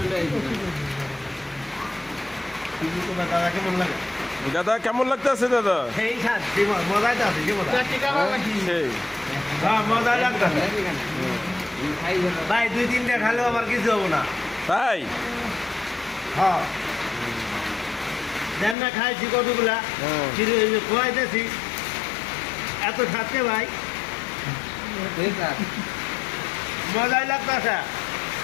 দাদা কেমন লাগে? দাদা কেমন লাগতেছে দাদা? সেই শান্তি মজাই তো আছে কি মজা? সেই হ্যাঁ মজা লাগতেছে ভাই, 2-3টা খালেও আমার কিছু হবো না। তাই হ্যাঁ দেন না, খাইছি কতগুলা খোয়াইতেছি এত খাচ্ছে ভাই, মজাই লাগতেছে।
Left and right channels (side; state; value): right; drops out; at 18.8 s